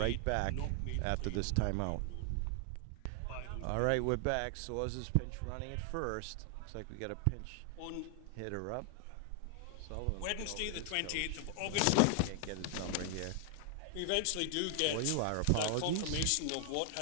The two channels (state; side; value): different; both; correlation 0.00